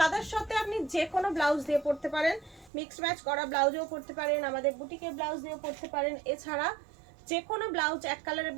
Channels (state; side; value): drops out; left; at 2.7 s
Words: সাথে আপনি যে কোনো ব্লাউজ দিয়ে পরতে পারেন, মিক্স ম্যাচ করা ব্লাউজেও পরতে পারেন, আমাদের বুটিকের ব্লাউজ দিয়েও পরতে পারেন। এছাড়া যে কোনো ব্লাউজ এক কালারের